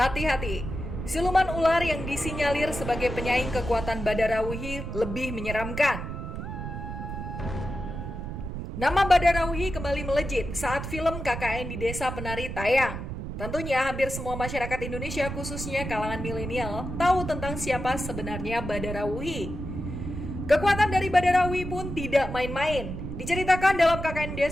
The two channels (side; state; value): right; noise; rumble, 6 dB below the sound